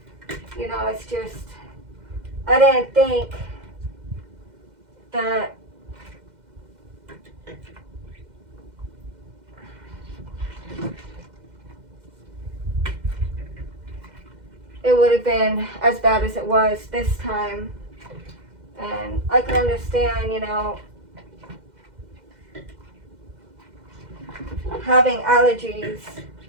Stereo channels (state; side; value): late; left; 2.1 ms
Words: It's just, I didn't think that it would have been as bad as it was this time. And I can understand, having allergies